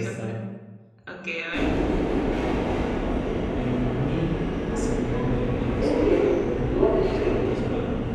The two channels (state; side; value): identical; both; correlation 1.00